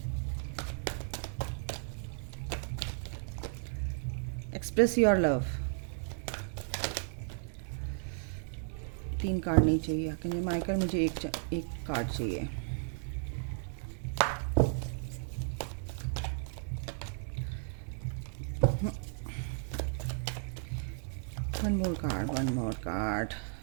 Express your love. 3 card नहीं चाहिए क्योंकि माइकल, मुझे एक कार्ड चाहिए। One more card.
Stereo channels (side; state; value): left; silent; digital silence